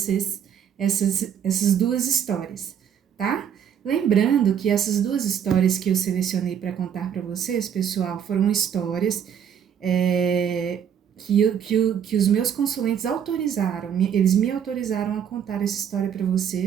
essas duas histórias, tá? Lembrando que essas duas histórias que eu selecionei para contar para vocês, pessoal, foram histórias que os meus consulentes autorizaram, eles me autorizaram a contar essa história para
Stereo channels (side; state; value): left; quieter; 8.5 dB